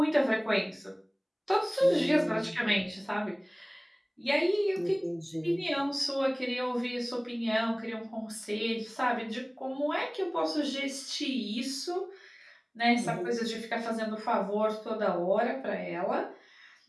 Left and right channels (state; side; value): identical; both; correlation 1.00